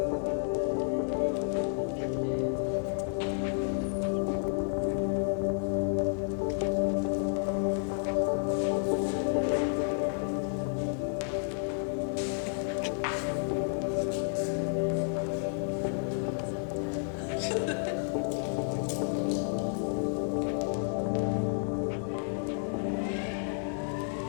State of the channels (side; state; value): right; silent; digital silence